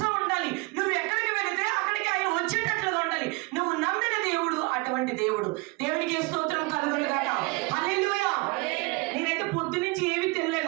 ఉండాలి. నువ్వు ఎక్కడికి వెళితే అక్కడికి ఆయన వచ్చేటట్లుగా ఉండాలి. నువ్వు నమ్మిన దేవుడు అటువంటి దేవుడు. దేవునికి స్తోత్రం కలుగును గాక. హల్లెలూయా. నేనైతే పొద్దు నుంచి ఏమీ తినలే.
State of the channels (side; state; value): left; quieter; 26.9 dB